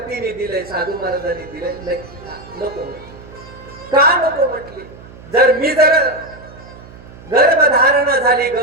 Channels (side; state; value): right; noise; hum, 19 dB below the sound